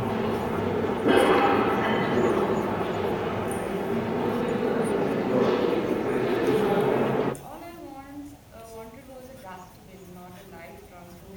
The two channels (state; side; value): identical; both; correlation 1.00